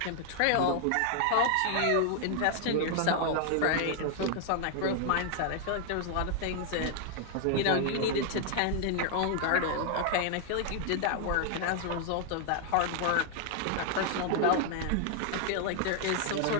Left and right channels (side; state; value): both; different; correlation 0.00